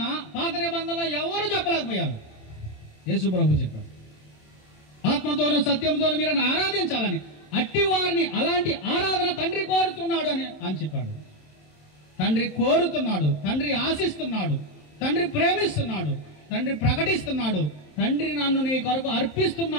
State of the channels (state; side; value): late; right; 27 ms